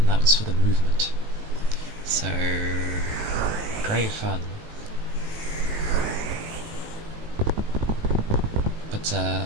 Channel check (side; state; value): left; late; 18 ms